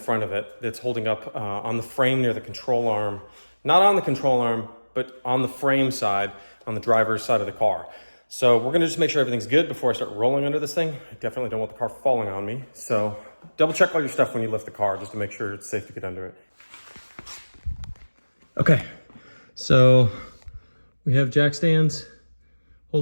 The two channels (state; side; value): inverted; both; correlation -1.00